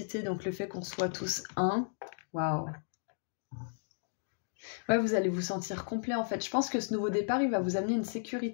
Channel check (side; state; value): right; silent; digital silence